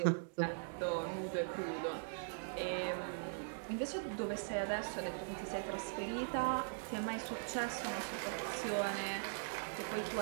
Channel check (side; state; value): left; silent; digital silence